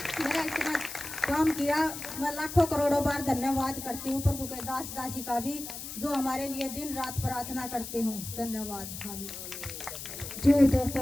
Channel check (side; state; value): left; noise; hiss, 9 dB below the sound